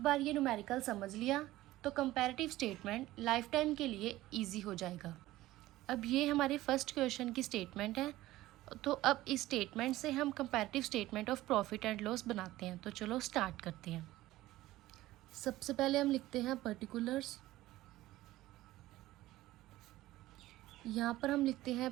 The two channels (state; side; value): quieter; left; 16.4 dB